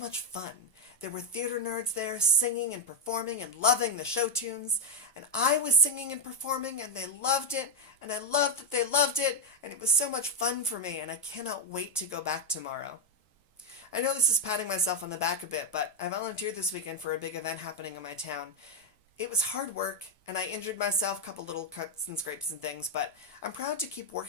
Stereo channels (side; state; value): both; normal; correlation 0.04